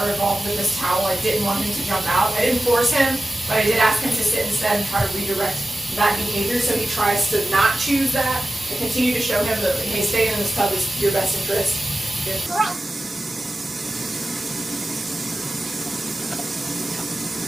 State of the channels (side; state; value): both; normal; correlation 0.93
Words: involved with this towel, I didn't want him to jump out. I didn't force him, but I did ask him to sit instead and try to redirect that behavior, so he tries to not choose that. I continue to show him that, hey, staying in this tub is your best interest. Good boy.